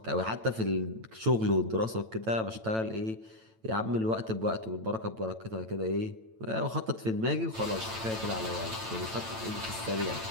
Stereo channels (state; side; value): late; left; 9.0 ms